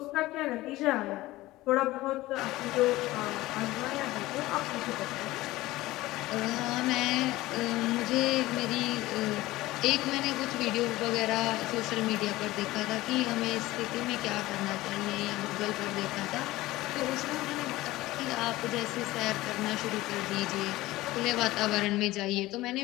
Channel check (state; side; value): quieter; right; 17.9 dB